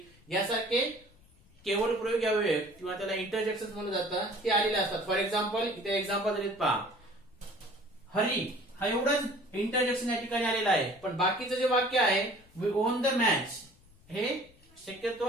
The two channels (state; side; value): noise; left; rumble, 28 dB below the sound